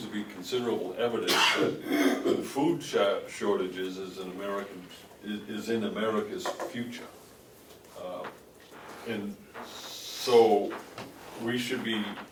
to be considerable evidence that food shortages is in America's future. And so we should be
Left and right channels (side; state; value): both; identical; correlation 1.00